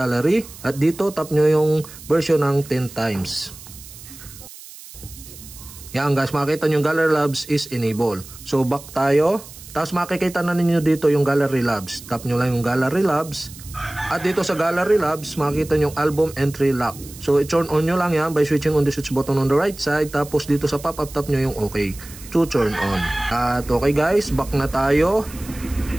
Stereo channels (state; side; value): noise; right; hiss, 17 dB below the sound